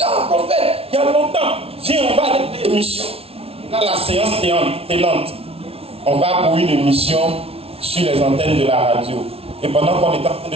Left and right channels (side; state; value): left; late; 0.28 ms